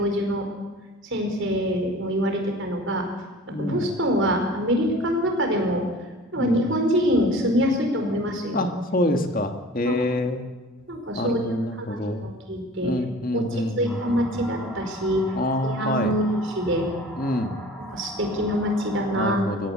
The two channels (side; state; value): both; normal; correlation 0.43